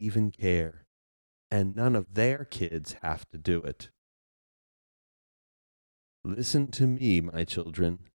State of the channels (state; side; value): inverted; both; correlation -1.00